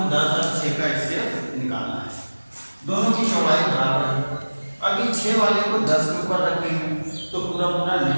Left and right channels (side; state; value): both; inverted; correlation -1.00